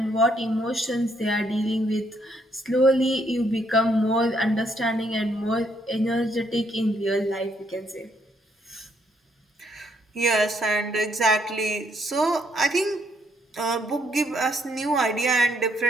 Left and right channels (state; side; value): normal; both; correlation 0.71